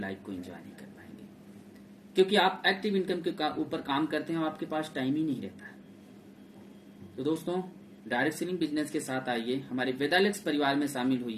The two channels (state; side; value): identical; both; correlation 1.00